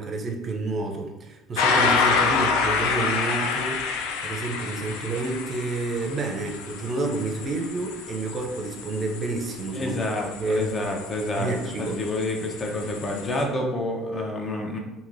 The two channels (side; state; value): both; normal; correlation 0.44